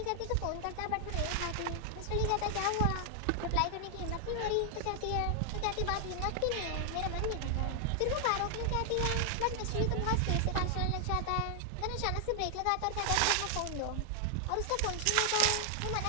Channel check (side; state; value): both; different; correlation 0.00